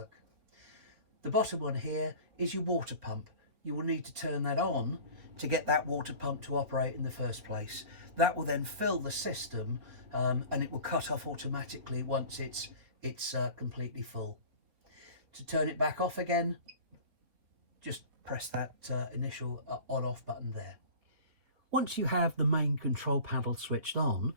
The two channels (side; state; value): left; late; 4.3 ms